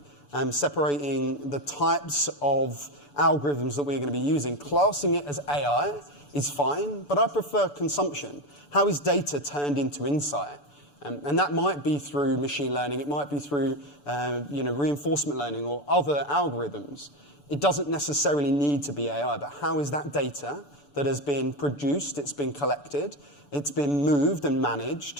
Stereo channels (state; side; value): late; right; 6.9 ms